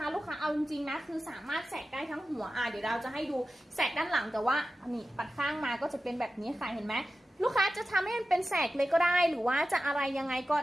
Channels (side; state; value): both; normal; correlation 0.93